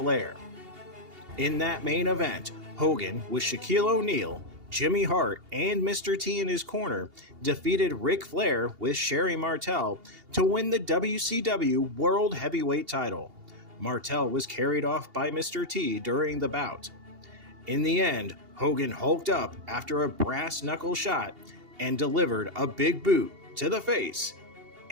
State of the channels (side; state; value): left; late; 2.8 ms